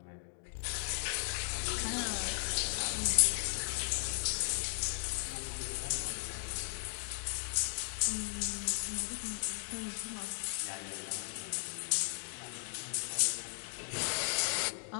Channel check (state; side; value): silent; right; digital silence